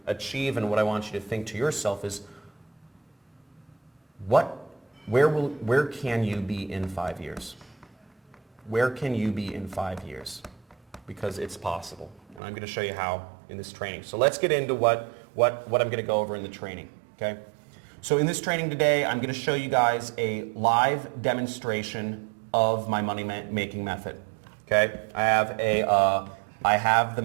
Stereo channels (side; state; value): left; drops out; at 12.4 s